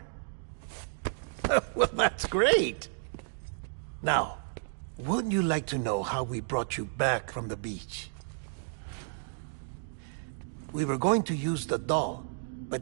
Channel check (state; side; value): silent; left; digital silence